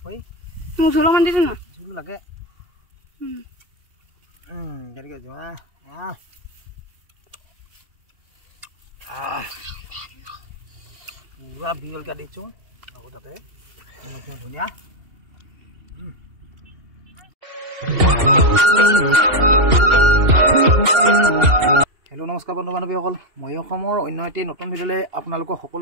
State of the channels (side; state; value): left; late; 2.8 ms